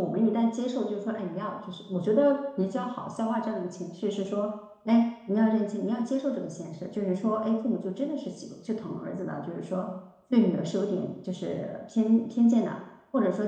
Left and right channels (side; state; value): both; identical; correlation 1.00